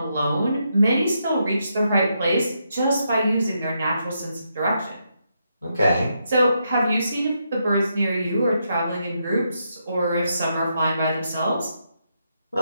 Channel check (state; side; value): inverted; both; correlation -0.81